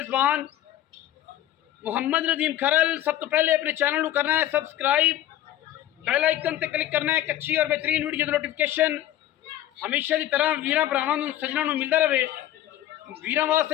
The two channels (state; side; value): quieter; right; 12.9 dB